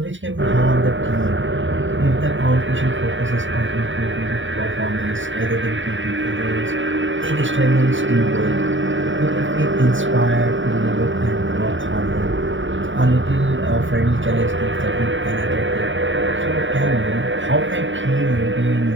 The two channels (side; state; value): left; late; 0.56 ms